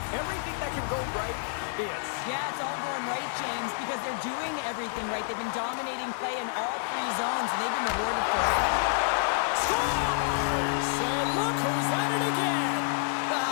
everything that can go right is. Yeah, it's all going right, James, because they're doing everything right. They've been dominating play in all three zones, and they've been rewarded for it. Scores! And look who's at it again.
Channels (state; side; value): silent; right; digital silence